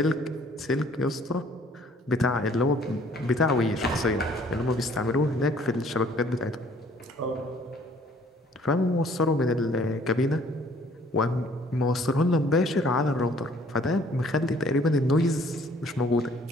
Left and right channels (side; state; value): both; normal; correlation 0.58